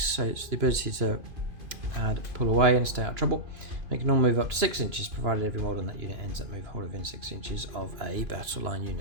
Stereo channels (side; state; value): left; late; 2.9 ms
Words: it's the ability to pull away and stay out of trouble. Make a normal move up to 6 inches, provided every model in that unit ends that move whole within 6 inches of a battle line